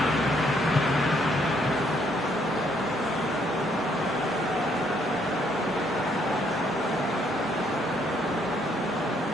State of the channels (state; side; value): normal; both; correlation 0.69